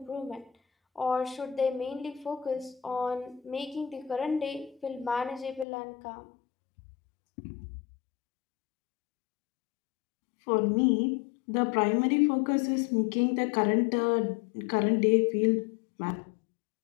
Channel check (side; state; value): right; drops out; at 5.7 s